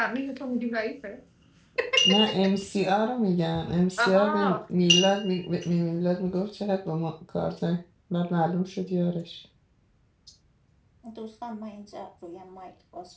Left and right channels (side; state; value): both; identical; correlation 1.00